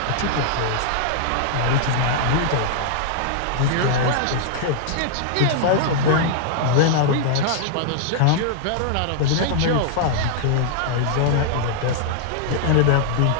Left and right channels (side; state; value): both; different; correlation -0.01